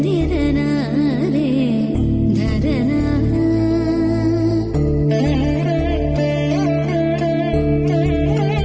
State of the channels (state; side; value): identical; both; correlation 1.00